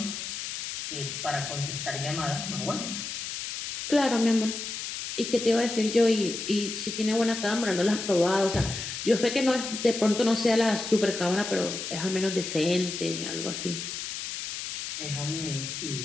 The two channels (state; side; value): noise; left; hiss, 6 dB below the sound